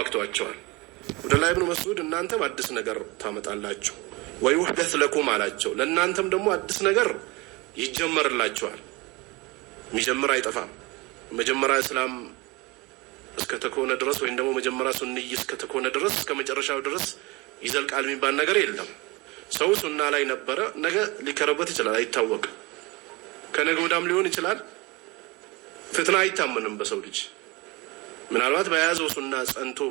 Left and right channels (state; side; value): quieter; left; 24.4 dB